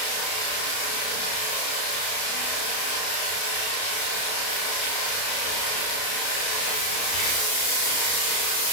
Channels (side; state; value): right; late; 32 ms